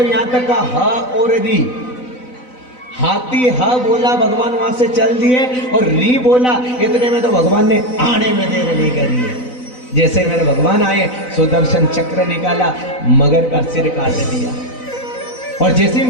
यहां तक कहा हा और दी। हाथी हा बोला, भगवान वहां से चल दिए, और री बोला, इतने में तो भगवान ने आने में देर नहीं करी है। जैसे मेरे भगवान आए, सुदर्शन चक्र निकाला, मगर का सिर काट दिया। और जैसे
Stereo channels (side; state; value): right; late; 4.0 ms